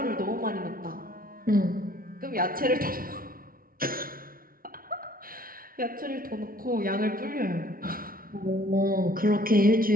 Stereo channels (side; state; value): left; late; 0.42 ms